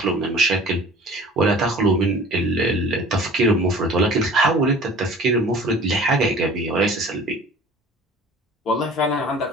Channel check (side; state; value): both; normal; correlation 0.45